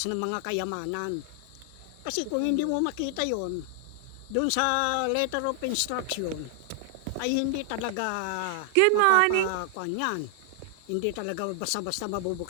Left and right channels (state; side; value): different; both; correlation 0.00